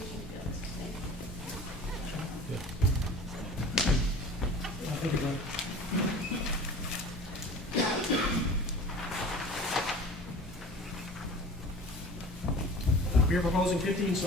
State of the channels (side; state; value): both; normal; correlation 0.40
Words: fields. Thank you. Thank you, Brian. We are proposing 15